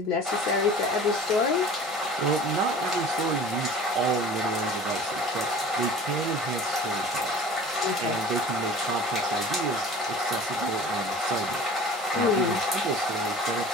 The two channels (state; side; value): normal; both; correlation 0.42